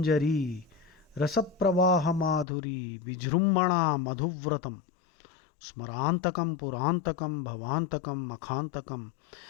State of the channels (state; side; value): drops out; right; at 2.5 s